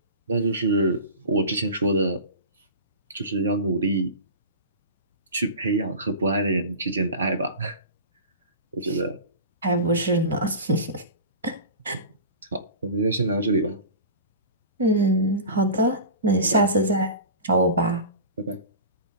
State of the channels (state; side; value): inverted; both; correlation -0.32